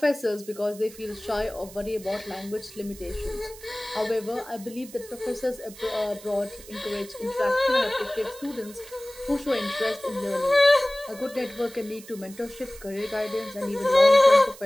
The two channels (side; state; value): right; noise; hiss, 18 dB below the sound